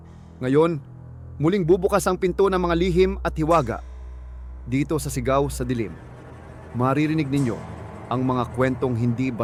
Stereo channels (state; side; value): identical; both; correlation 1.00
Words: Ngayon, muling bubukas ang pinto ng mga lihim at hiwaga. Dito sa Sigaw sa Dilim, maririnig ninyo ang mga kwentong hindi